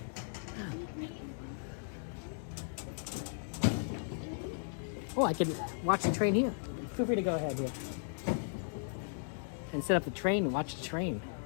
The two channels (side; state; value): right; silent; digital silence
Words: Oh, I can watch the train here. Feel free to go ahead here. And set up the train and watch the train.